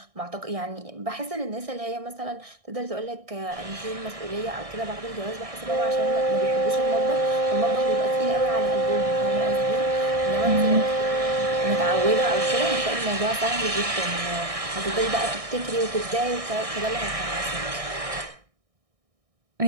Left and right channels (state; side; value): late; left; 1.6 ms